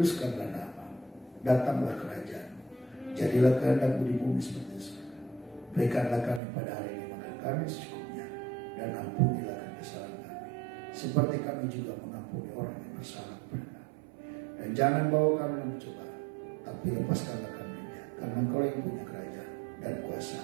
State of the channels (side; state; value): left; drops out; at 6.4 s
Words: nama, datanglah kerajaan, jadilah kehendak-Mu di bumi seperti di surga. Berikanlah kami pada hari ini makan kami secukupnya, dan ampunilah kami kesalahan kami, seperti kami juga mengampuni orang yang bersalah kepada kami. Dan jangan bawa kami dalam pencobaan, tapi lepaskanlah kami dari jahat, karena Engkau yang punya kerajaan dan kuasa